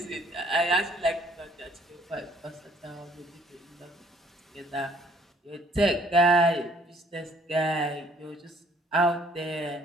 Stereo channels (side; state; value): both; normal; correlation 0.62